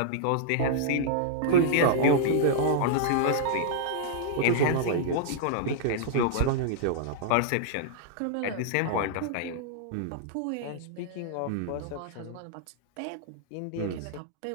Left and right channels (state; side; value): different; both; correlation -0.01